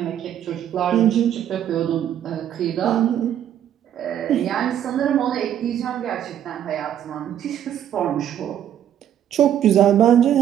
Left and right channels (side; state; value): left; quieter; 10.4 dB